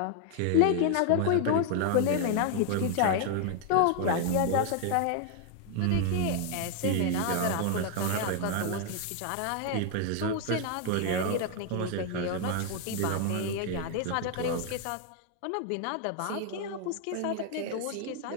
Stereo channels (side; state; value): both; different; correlation 0.00